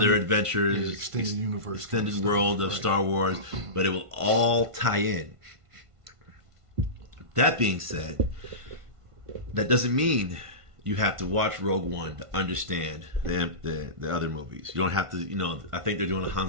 adventures, extended universe, extended world of Star Wars, but it will all tie in. That being said, that doesn't mean you have to watch Rogue One to understand the other movies. You don't have to, I think they're doing a Han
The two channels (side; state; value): left; late; 1.5 ms